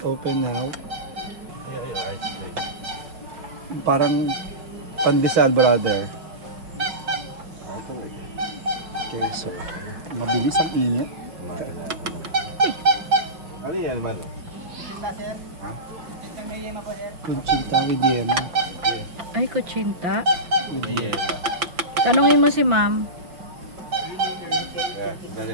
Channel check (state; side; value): late; left; 5.8 ms